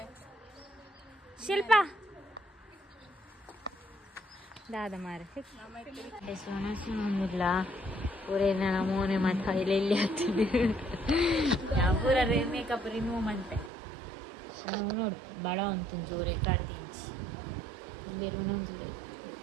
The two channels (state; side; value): drops out; left; at 13.7 s